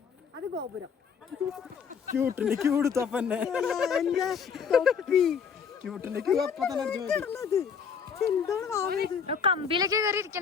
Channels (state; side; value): quieter; right; 6.6 dB